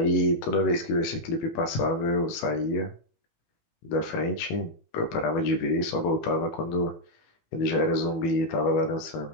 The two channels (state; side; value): late; right; 18 ms